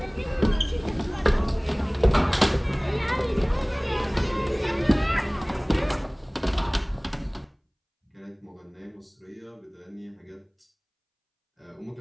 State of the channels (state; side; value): identical; both; correlation 1.00